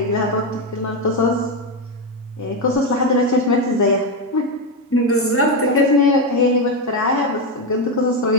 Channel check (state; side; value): normal; both; correlation 0.09